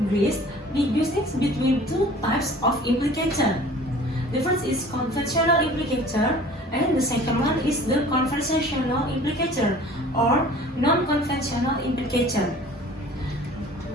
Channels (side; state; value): both; normal; correlation 0.47